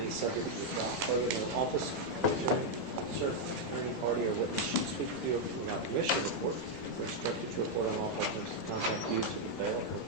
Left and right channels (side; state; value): both; normal; correlation -0.01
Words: any subject of the trial. Further, no office, attorney, officer, attorney, party, or witness should speak to you without permission to report. We're instructed to report on all questions to contact you to the bail or